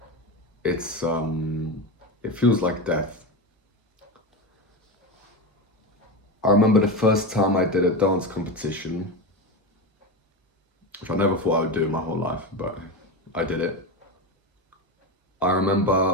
It feels like death. I remember the first time I did a dance competition, which I never thought I would do in my whole life, but I did it. I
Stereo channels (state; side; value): normal; both; correlation 0.19